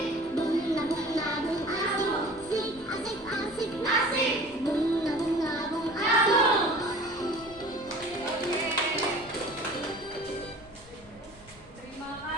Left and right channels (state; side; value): noise; left; rumble, 22 dB below the sound